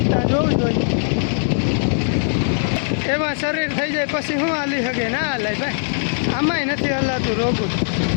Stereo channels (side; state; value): right; silent; digital silence